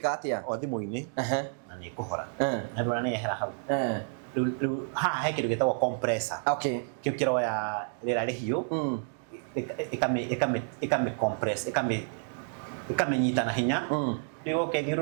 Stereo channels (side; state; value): left; silent; digital silence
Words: atĩa o thimũ-inĩ na nĩ ĩkũhora na ndũra nĩ yehera hau haha he kĩndũ gĩtagwo compressor. Okay, kĩu kĩroya rĩera rĩhiũ ĩkame compress ĩkamenyita na hinya rĩu